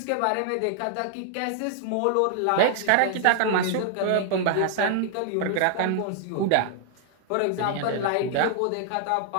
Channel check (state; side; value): different; both; correlation 0.00